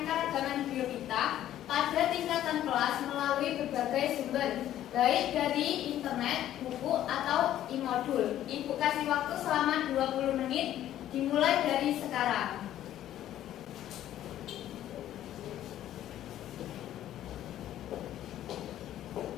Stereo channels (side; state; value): right; quieter; 12.3 dB